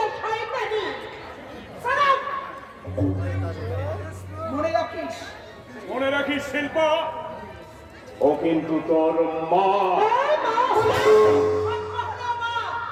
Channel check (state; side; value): identical; both; correlation 1.00